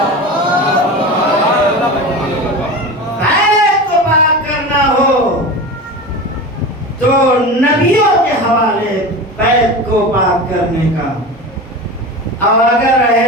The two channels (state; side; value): normal; both; correlation 0.29